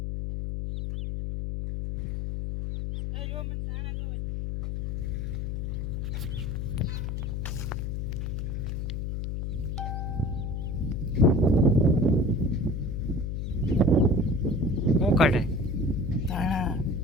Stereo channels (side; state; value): left; noise; hum, 2 dB below the sound